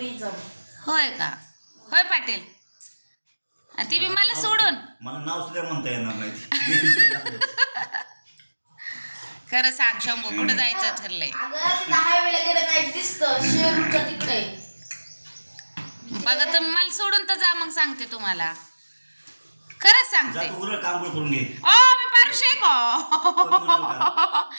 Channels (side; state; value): both; inverted; correlation -1.00